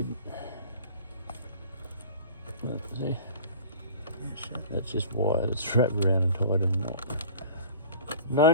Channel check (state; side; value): inverted; both; correlation -0.42